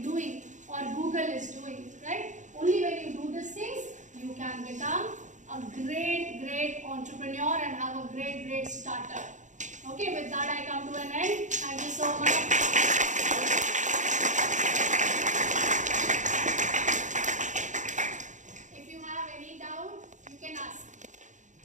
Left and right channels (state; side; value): late; left; 0.36 ms